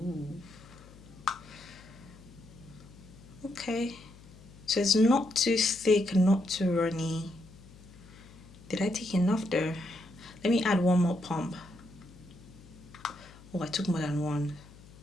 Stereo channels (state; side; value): noise; left; hum, 21 dB below the sound